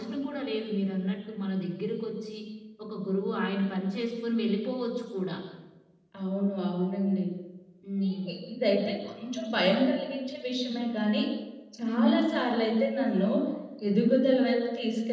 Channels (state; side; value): identical; both; correlation 1.00